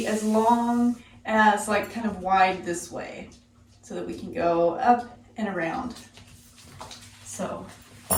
as long as like kind of wide this way, so that we can go up and around. So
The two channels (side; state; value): both; identical; correlation 1.00